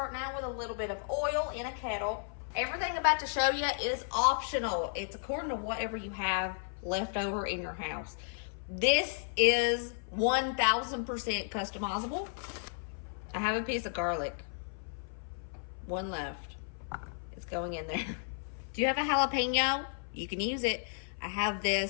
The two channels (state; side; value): silent; right; 55 dB below the other